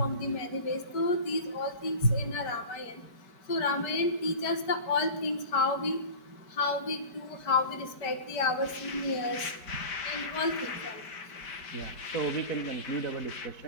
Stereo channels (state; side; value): late; right; 4.6 ms